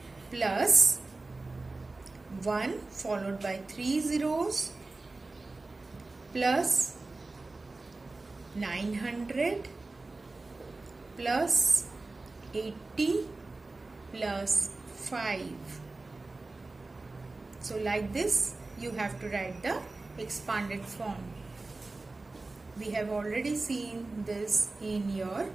plus 1 followed by 3 zeros plus 900 plus 80 plus 5. So like this you have to write the expanded form. We have already seen this in your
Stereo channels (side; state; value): left; quieter; 3.3 dB